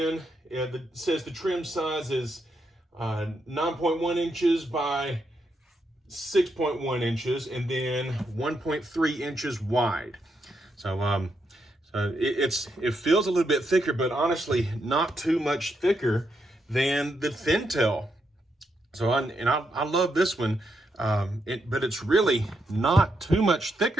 It says the trim size is 9.1 inches by 6.1 inches, and then 1.3 inches wide. So it feels a little bit thicker, but honestly, not too much thicker than the thin tail. So I love this one, but it's really not too much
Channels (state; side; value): normal; both; correlation 0.80